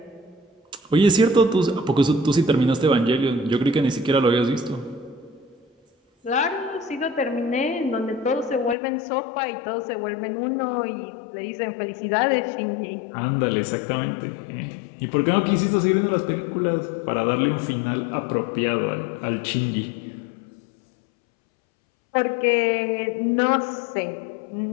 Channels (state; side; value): drops out; right; at 8.8 s